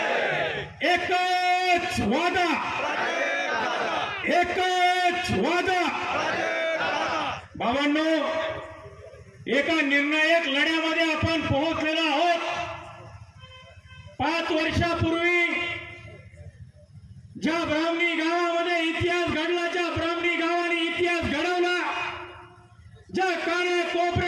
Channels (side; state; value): both; identical; correlation 1.00